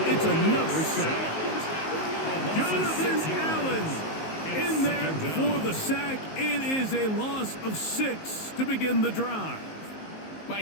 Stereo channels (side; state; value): right; late; 19 ms